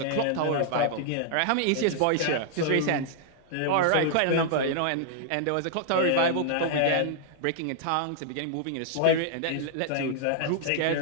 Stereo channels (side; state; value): both; different; correlation -0.01